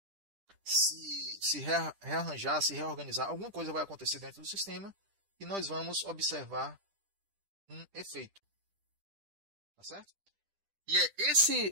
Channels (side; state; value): left; late; 10 ms